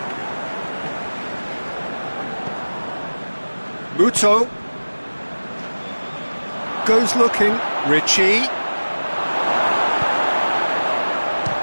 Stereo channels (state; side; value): inverted; both; correlation -1.00